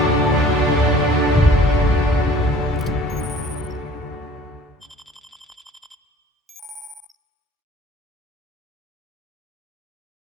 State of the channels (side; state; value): both; normal; correlation 0.50